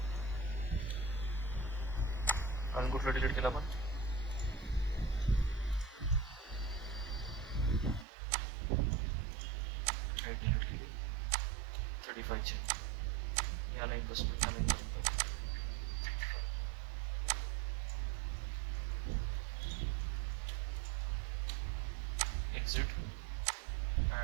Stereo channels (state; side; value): drops out; left; at 8.1 s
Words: आणि कुठलं डिलीट केलं आपण, डिलीट केली 35ची, या लाईनपासून या लाईनपर्यंत. एक्झिट